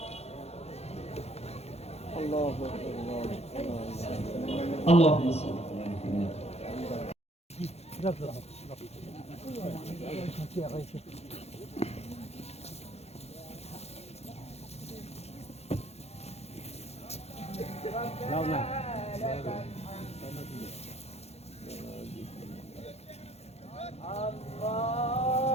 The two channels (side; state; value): right; late; 0.31 ms